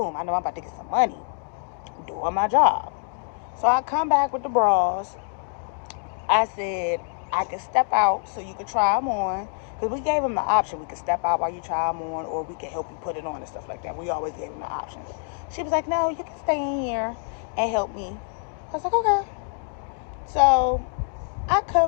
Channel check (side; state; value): right; silent; 56 dB below the other